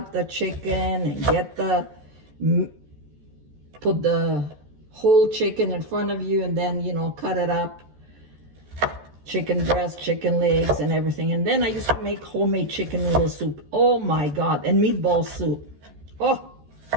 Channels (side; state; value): left; late; 14 ms